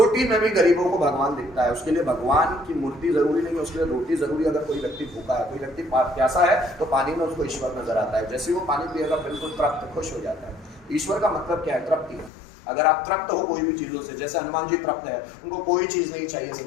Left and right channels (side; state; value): right; drops out; at 12.3 s